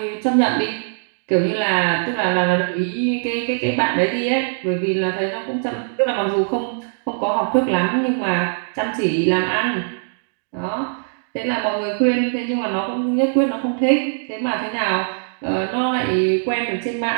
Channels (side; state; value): left; silent; digital silence